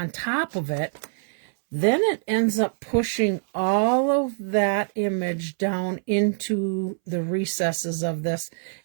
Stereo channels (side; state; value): left; silent; 62 dB below the other